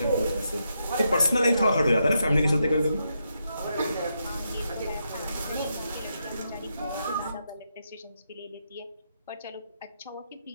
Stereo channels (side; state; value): both; inverted; correlation -0.82